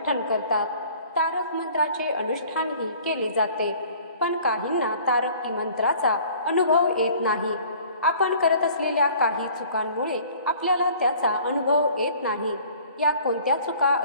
करतात. तारक मंत्राचे अनुष्ठानही केले जाते, पण काहींना तारक मंत्राचा अनुभव येत नाही. आपण करत असलेल्या काही चुकांमुळे आपल्याला त्याचा अनुभव येत नाही. या कोणत्या चुका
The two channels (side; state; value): both; inverted; correlation -0.51